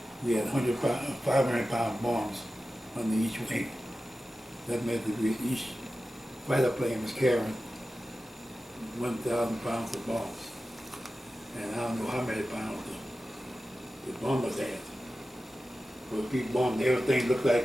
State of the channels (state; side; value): normal; both; correlation 0.94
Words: we had 500-pound bombs under each wing. That meant that each fighter plane was carrying 1,000 pounds of bombs. And I don't know how many pounds the bombers had. But we bombed everything, looked